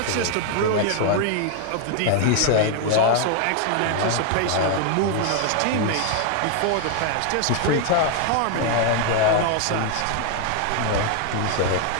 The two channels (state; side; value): different; both; correlation 0.00